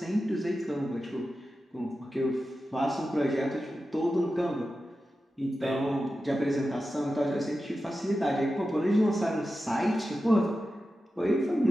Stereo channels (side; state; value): both; normal; correlation 0.92